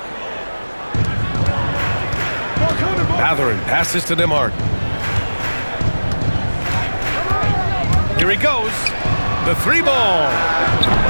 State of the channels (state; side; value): inverted; both; correlation -1.00